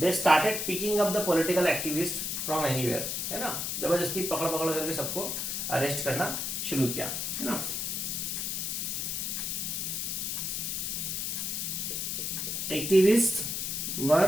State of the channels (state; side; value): noise; left; hiss, 2 dB below the sound